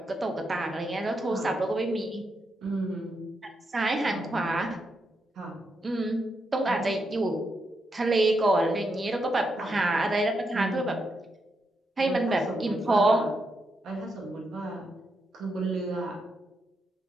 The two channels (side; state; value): both; normal; correlation 0.82